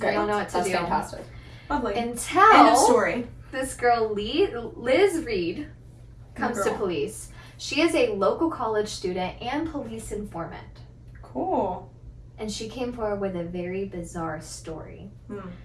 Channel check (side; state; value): both; identical; correlation 1.00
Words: They Great. don't know what to That's do. fantastic. lovely. End of Until story. this girl, Liz Reed, comes to Girl. police. She is a local college student and police informant. Cool. And she came forward with a very bizarre story. Hmm.